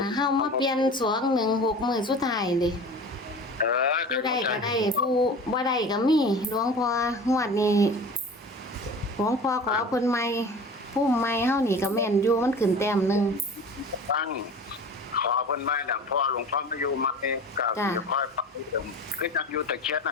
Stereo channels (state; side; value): normal; both; correlation 0.37